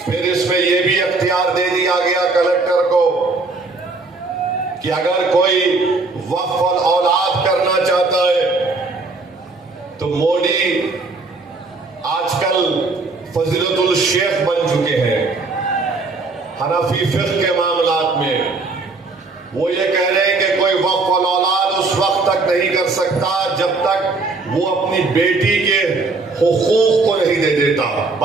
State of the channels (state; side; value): quieter; left; 3.7 dB